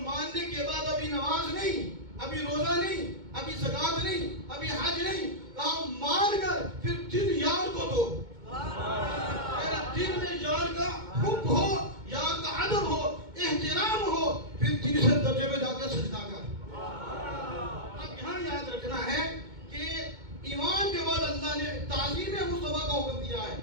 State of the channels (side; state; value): left; late; 2.2 ms